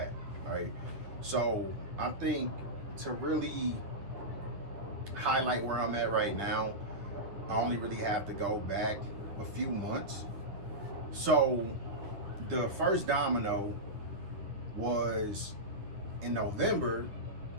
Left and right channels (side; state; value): left; late; 9.6 ms